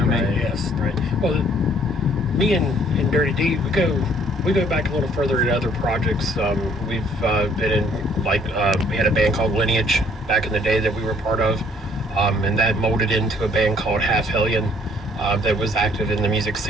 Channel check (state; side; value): normal; both; correlation 0.61